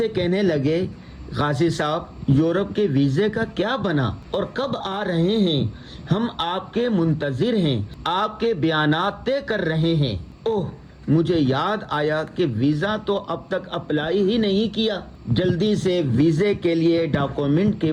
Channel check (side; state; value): both; identical; correlation 1.00